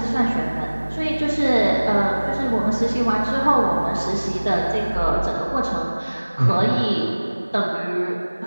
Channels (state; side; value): inverted; both; correlation -1.00